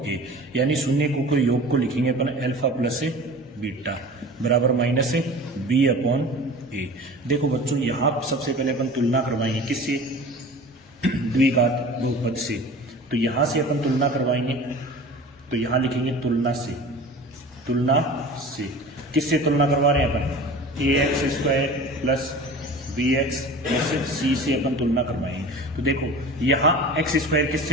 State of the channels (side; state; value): both; normal; correlation 0.39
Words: ए। यानी शून्यकों के योग को लिखेंगे अपन अल्फा प्लस बीटा बराबर माइनस बी अपॉन ए। देखो बच्चों, यहाँ सबसे पहले अपन तुलना करवाएंगे किससे, द्विघात बहुपद से। तो यहां से अपन तुलना करवाएंगे, तो यहां लिखेंगे तुलना से। तुलना से किससे तुलना करवा रहे हैं अपन, ax square plus bx plus c से अपन तुलना करवाएंगे। तो देखो यहाँ x स्क्वायर